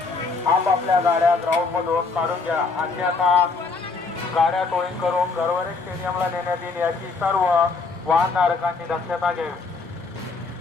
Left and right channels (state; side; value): quieter; right; 4.2 dB